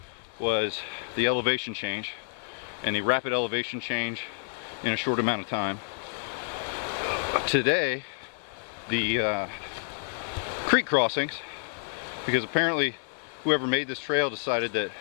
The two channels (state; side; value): silent; right; digital silence